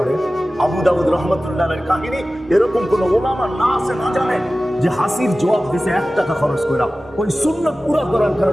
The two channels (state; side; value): normal; both; correlation 0.96